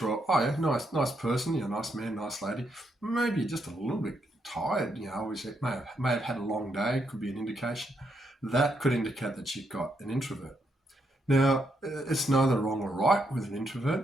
where, nice person, nice man, nice lady, maybe you're just a little bit tired, obviously may have had a long day, could be an indication. That could indicate that you've got an introvert. Now, it's neither wrong or right with an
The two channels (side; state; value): both; normal; correlation 0.78